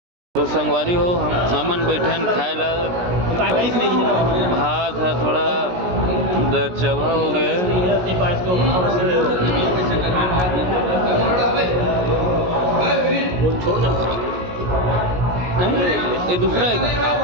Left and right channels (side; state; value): left; late; 17 ms